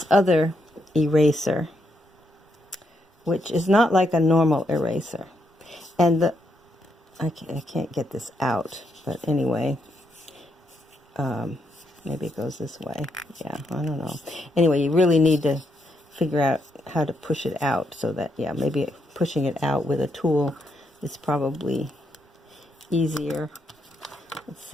other eraser, which is not like a normal eraser. And I can't get this out, but anyway, maybe it goes this way. Yeah, I don't know. Anyway, you really need to figure out how to push it out, so that, yeah, maybe pushing it out with a tool is probably easier. Let's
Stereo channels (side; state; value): both; normal; correlation 0.79